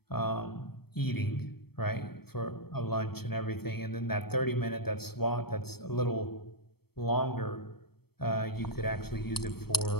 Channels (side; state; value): right; late; 0.96 ms